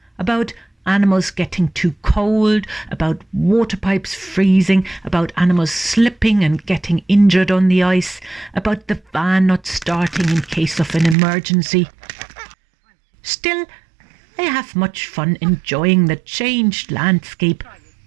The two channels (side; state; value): left; drops out; at 11.2 s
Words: about animals getting too cold, about water pipes freezing, about animals slipping and getting injured on the ice, about the van not starting in case of an emergency. Still, I have much fun enjoying the changed landscape.